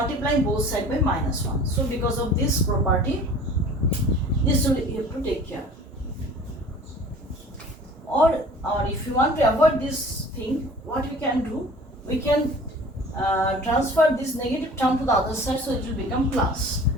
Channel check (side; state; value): both; normal; correlation 0.45